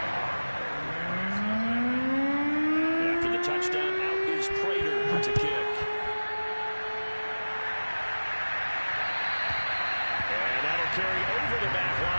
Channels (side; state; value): both; inverted; correlation -1.00